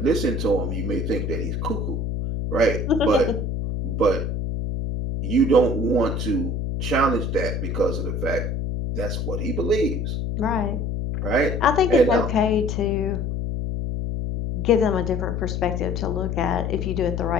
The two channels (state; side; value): noise; left; hum, 2 dB below the sound